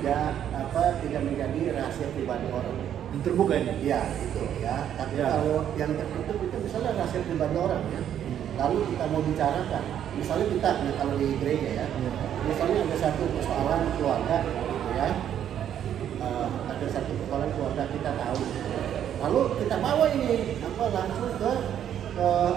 menjadi rahasia pribadi orang. Yang terbuka ini? Iya, itu ya. Tapi kalau yang tertutup itu misalnya rahasia pribadi orang ya. Lalu kita mau bicarakan, misalnya kita kalau di gereja ya, misalnya ada satu persoalan keluarga gitu ya. Ada satu persoalan keluarga kita tahu. Lalu kita bawa ini langsung ke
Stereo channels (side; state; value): left; quieter; 9.9 dB